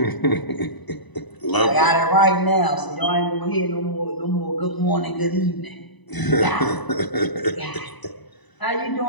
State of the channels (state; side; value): late; right; 1.0 ms